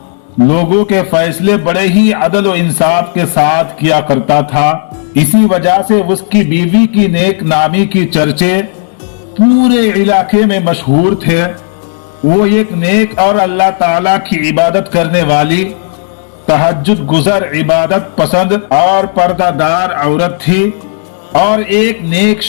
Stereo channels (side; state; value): right; silent; 63 dB below the other